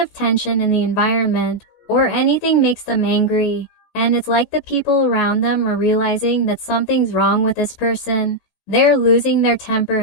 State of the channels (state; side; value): late; right; 16 ms